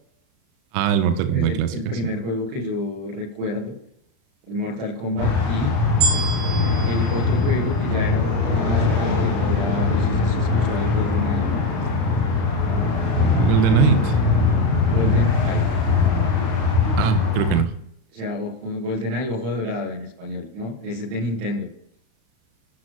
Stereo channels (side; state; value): left; late; 35 ms